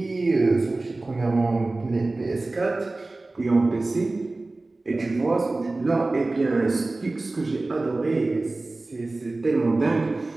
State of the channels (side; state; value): left; quieter; 3.1 dB